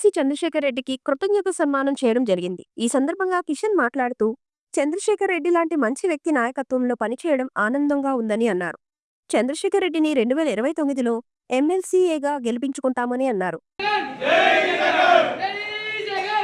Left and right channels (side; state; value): both; identical; correlation 1.00